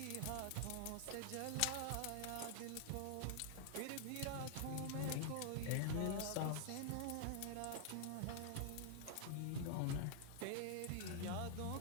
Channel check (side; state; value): both; different; correlation 0.00